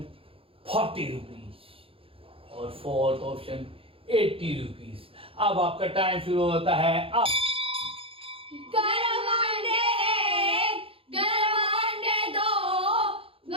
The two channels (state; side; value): late; left; 0.27 ms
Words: 40 rupees और फोर्थ ऑप्शन 80 रुपीज। अब आपका टाइम शुरू होता है। अब गरम अंडे 1, गरम अंडे 2,